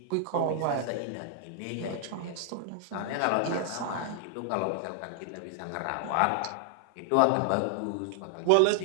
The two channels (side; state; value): both; different; correlation 0.00